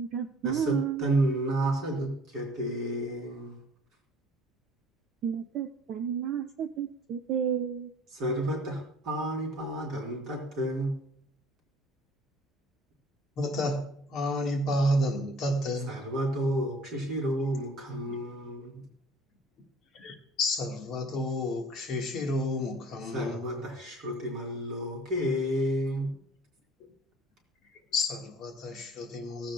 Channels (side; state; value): both; normal; correlation 0.51